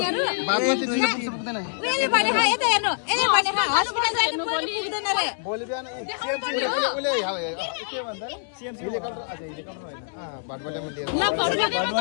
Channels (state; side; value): silent; right; 62 dB below the other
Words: भागमा त्यति त पुग्दैन उले भने हा यता हेर्नु यसले भने हा हस्पिटल जानु पुग्दैन रे भोलि बिहान उले के भन्छ सीएमसी हेलिकप्टर अच्छा हेलिकप्टर हैन भाटबलेमा लिएर